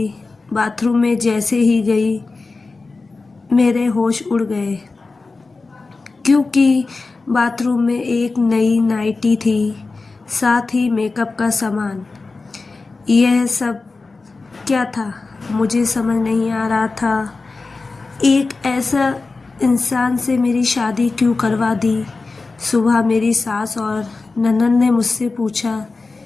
बाथरूम में जैसे ही गई मेरे होश उड़ गए, क्योंकि बाथरूम में एक नई नाइटी थी, साथ ही मेकअप का सामान। यह सब क्या था मुझे समझ नहीं आ रहा था। एक ऐसा इंसान से मेरी शादी क्यों करवा दी। सुबह मेरी सास और ननद ने मुझसे पूछा,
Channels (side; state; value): right; quieter; 3.8 dB